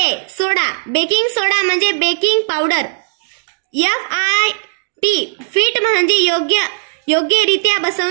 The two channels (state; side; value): silent; left; digital silence